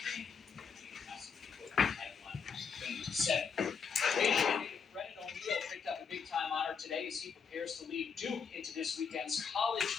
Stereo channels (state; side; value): quieter; right; 6.1 dB